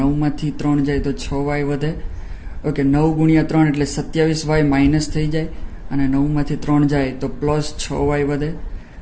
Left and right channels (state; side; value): identical; both; correlation 1.00